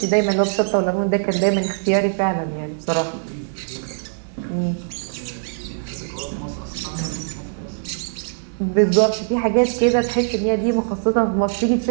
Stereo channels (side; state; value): left; silent; digital silence